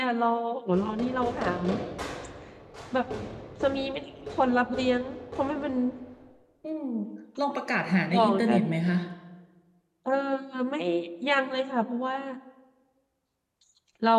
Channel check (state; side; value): identical; both; correlation 1.00